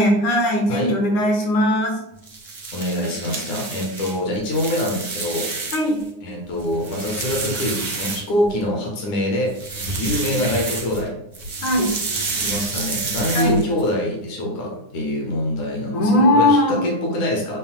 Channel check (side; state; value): right; late; 9.7 ms